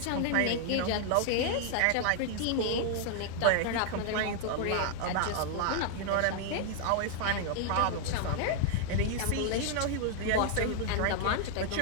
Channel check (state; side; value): different; both; correlation -0.01